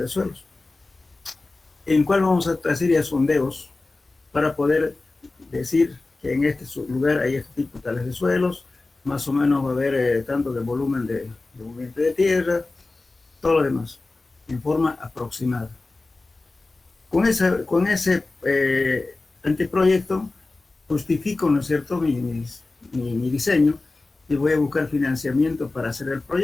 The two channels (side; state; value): right; quieter; 3.3 dB